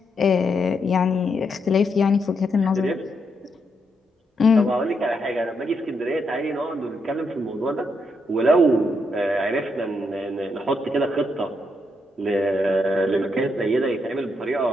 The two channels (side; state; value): both; normal; correlation 0.79